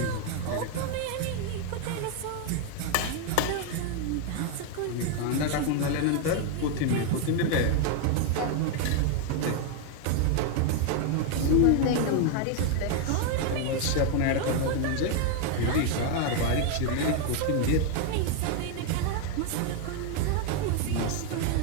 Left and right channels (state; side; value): different; both; correlation 0.01